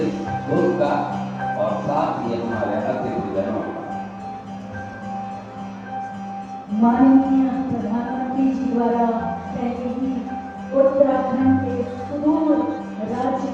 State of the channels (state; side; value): identical; both; correlation 1.00